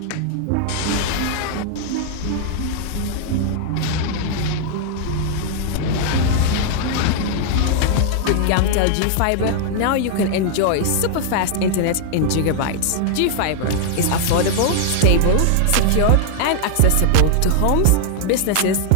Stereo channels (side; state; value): both; different; correlation 0.00